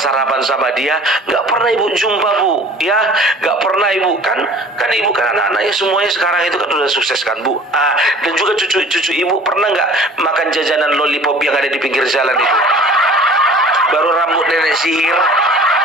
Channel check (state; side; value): normal; both; correlation 0.46